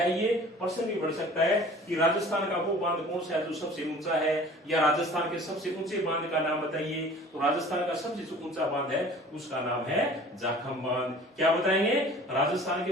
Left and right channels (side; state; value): both; normal; correlation 0.46